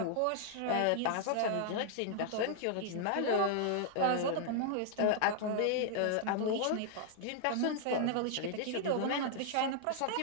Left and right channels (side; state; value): both; different; correlation -0.01